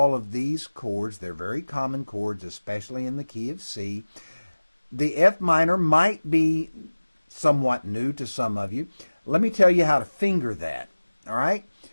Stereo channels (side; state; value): both; inverted; correlation -1.00